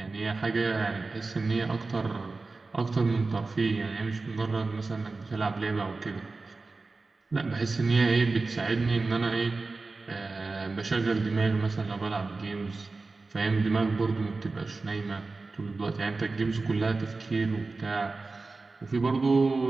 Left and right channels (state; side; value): quieter; left; 3.7 dB